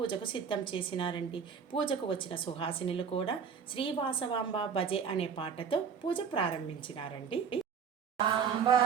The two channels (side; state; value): left; quieter; 6.7 dB